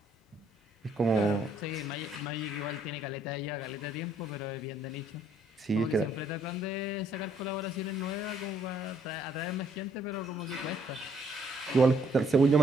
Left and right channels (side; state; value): both; normal; correlation 0.67